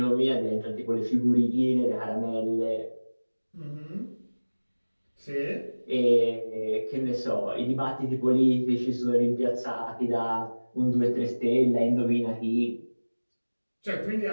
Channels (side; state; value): both; inverted; correlation -1.00